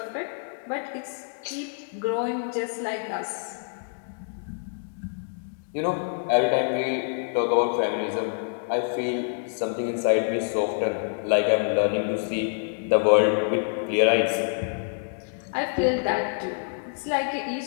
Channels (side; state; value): right; silent; digital silence